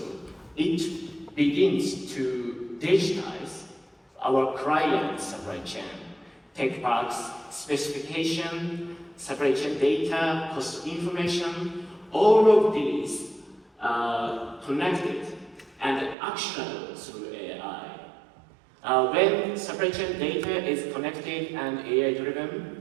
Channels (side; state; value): left; drops out; at 16.2 s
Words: it begins to digitize our client supply chain, tech parts, specification, supply chain data, cost information, all of these are connected and actionable through AI. When supply chain data is connected and